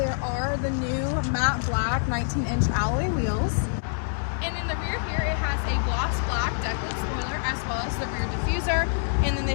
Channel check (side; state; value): right; silent; 61 dB below the other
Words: are the new matte black 19-inch alloy wheels. And in the rear here, it has a gloss black decklit spoiler as well as the rear diffuser. And then